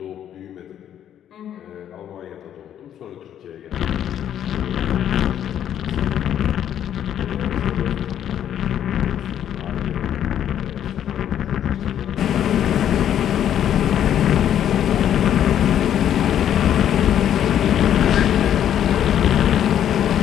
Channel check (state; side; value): quieter; right; 10.2 dB